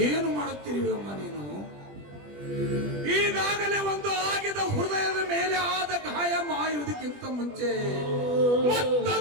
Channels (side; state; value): left; late; 20 ms